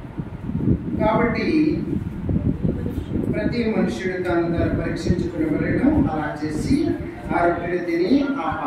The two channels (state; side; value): identical; both; correlation 1.00